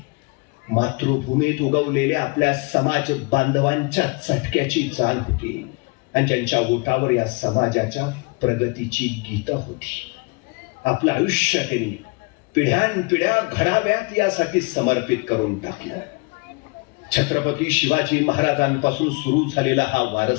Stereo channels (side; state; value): right; quieter; 28.8 dB